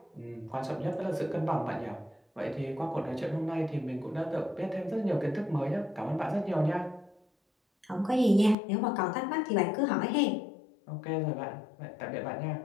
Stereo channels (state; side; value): drops out; right; at 8.6 s